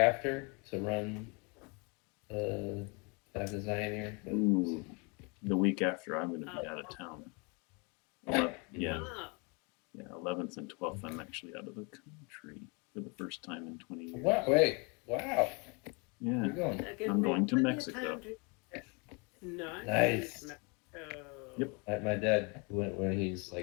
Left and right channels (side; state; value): right; quieter; 31.6 dB